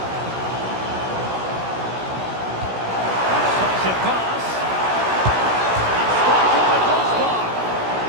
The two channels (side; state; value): left; late; 16 ms